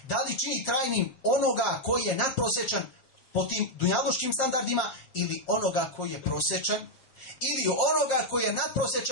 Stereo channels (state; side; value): late; right; 7.6 ms